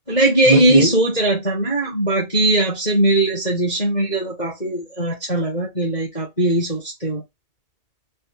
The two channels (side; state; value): right; late; 2.2 ms